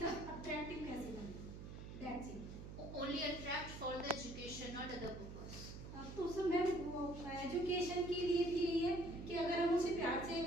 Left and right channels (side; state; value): right; noise; hum, 10 dB below the sound